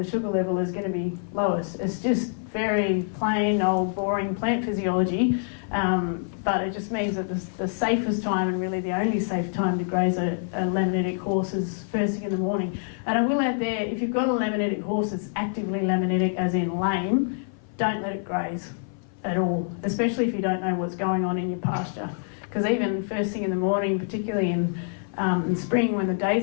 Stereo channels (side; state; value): right; silent; 56 dB below the other